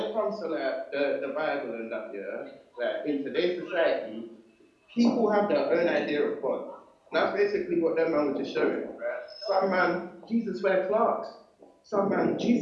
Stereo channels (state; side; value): identical; both; correlation 1.00